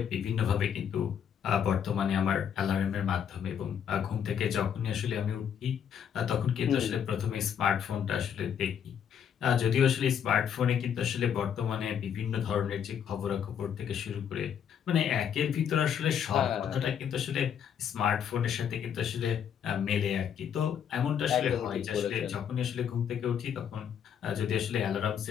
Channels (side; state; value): right; quieter; 8.4 dB